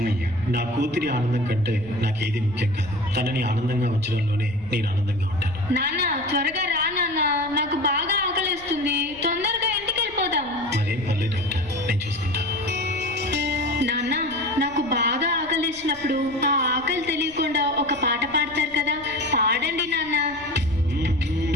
నా కూతురి ఆనందం కంటే నాకేది ముఖ్యం కాదు. తనని ఆనందంగా ఉంచడంలోనే నేను ఆనందంగా ఉంటాను. నాన్న త్వరగా రా నాన్న, నాకు బాగా ఆకలిస్తుంది. తొందరగా ఇంటికి వెళ్ళిపోదాం. మరేం పర్లేదు డాక్టర్, నేను చూసుకుంటాను. నాన్న నాకు బాగా ఆకలిసినప్పుడు ఆ ఆకలి తెలియకుండా ఒక పాట పాడతారు కదా, పాడండి నాన్న.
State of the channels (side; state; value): left; noise; rumble, 23 dB below the sound